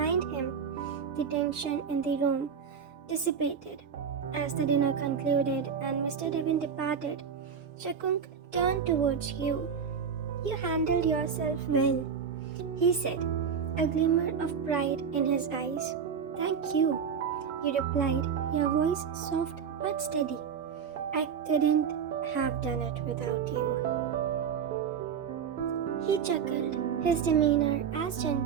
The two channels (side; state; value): left; quieter; 6.9 dB